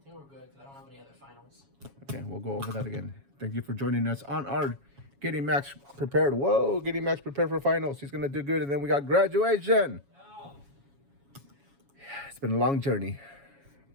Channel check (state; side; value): late; left; 7.2 ms